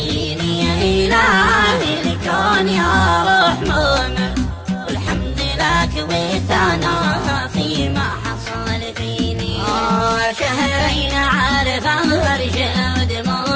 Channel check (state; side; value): identical; both; correlation 1.00